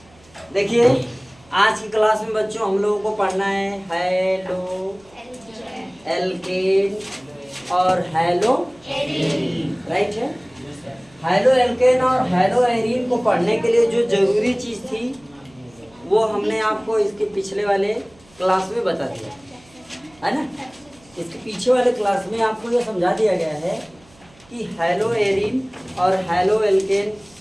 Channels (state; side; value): noise; right; hum, 28 dB below the sound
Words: देखिए, आज की क्लास में बच्चों हम लोगों को पढ़ना है हेलो एल्केन और हेलो राइट है। हेलो एल्केन और हेलो एरीन को पढ़ने के लिए जो जरूरी चीज़ थी वो हमने आपको इसके पिछले वाले क्लास में बता दिया है ना। इसके पीछे वाले क्लास में आपको ये समझा दिया गया है कि हेलो एरीन और हेलो एल्केन